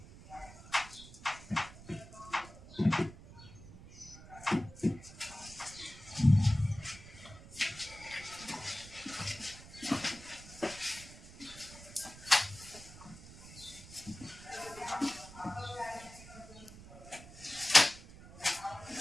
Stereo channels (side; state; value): right; noise; rumble, 17 dB below the sound